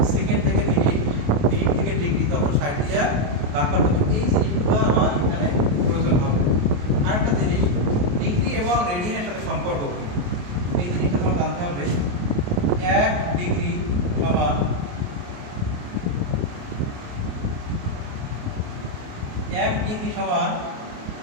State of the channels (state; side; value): late; left; 28 ms